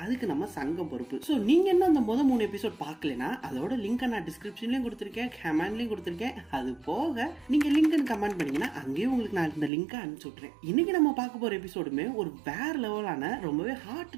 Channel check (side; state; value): left; drops out; at 9.7 s